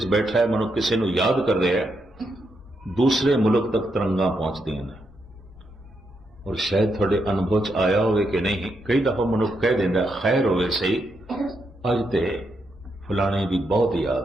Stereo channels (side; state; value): both; normal; correlation 0.81